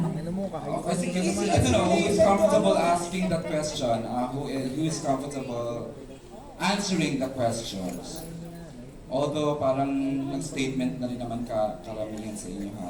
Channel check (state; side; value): identical; both; correlation 1.00